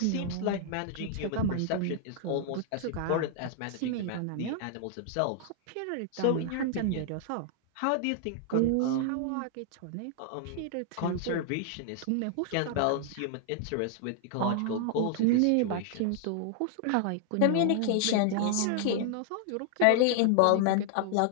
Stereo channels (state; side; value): different; both; correlation 0.00